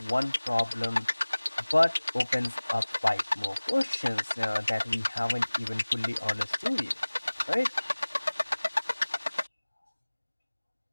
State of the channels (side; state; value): both; inverted; correlation -1.00